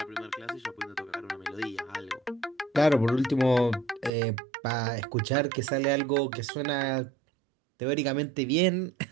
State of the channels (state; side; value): drops out; left; at 4.1 s